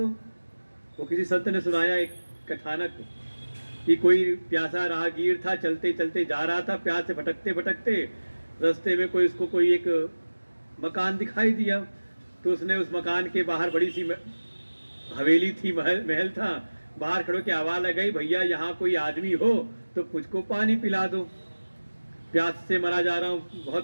वो किसी संत ने सुनाया एक कथानक कि कोई प्यासा राहगीर था, चलते चलते जा रहा था, प्यास से भटकते भटकते रास्ते में कोई एक मकान दिखाई दिया। तो उसने उस मकान के बाहर बड़ी सी हवेली थी, महल था, बाहर खड़ो के आवाज लगाई, भैया यहाँ कोई आदमी हो तो मुझको पानी पिला दो, प्यास से मरा जा रहा हूँ,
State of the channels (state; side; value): inverted; both; correlation -1.00